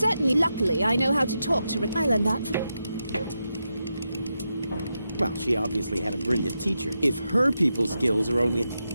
Luckily, I know how to talk to Rick. I learned that from... Well, she obviously had a brilliant teacher. If her people skills are only...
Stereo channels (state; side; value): inverted; both; correlation -0.87